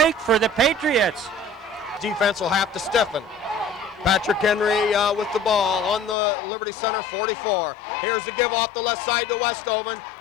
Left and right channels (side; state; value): right; drops out; at 6.2 s